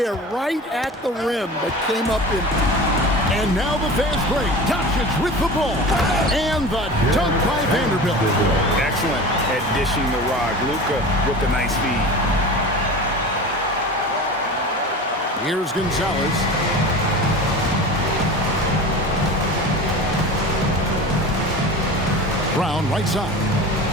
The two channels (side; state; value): both; normal; correlation 0.34